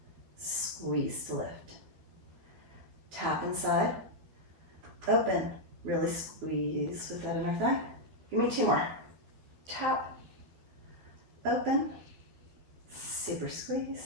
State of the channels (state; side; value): late; left; 13 ms